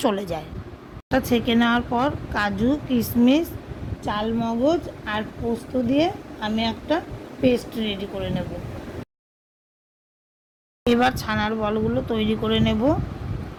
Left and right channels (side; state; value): both; identical; correlation 1.00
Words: চলে যায়। এটা ছেঁকে নেওয়ার পর কাজু, কিশমিশ, চালমগজ আর পোস্ত দিয়ে আমি একটা পেস্ট রেডি করে নেব। এবার ছানার বলগুলো তৈরি করে নেব।